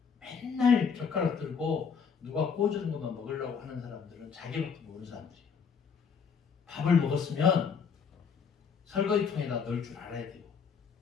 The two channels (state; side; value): quieter; right; 6.2 dB